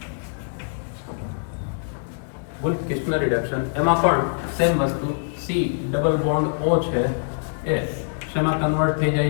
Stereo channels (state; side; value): silent; right; digital silence